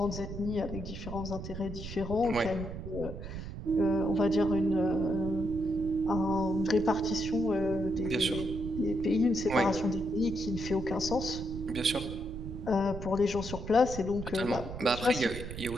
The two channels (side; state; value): right; noise; rumble, 9 dB below the sound